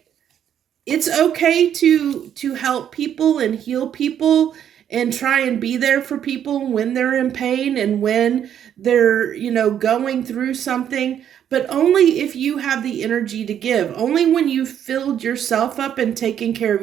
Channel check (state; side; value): quieter; left; 9.6 dB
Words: it's okay to help people and heal people and try and be there for people when they're in pain and when they're, going through something, but only if you have the energy to give, only when you've filled yourself up and taken care of